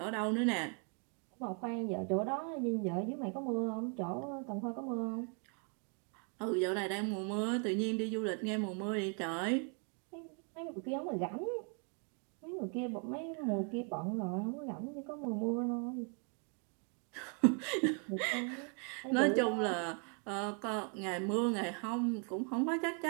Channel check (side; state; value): left; quieter; 39.6 dB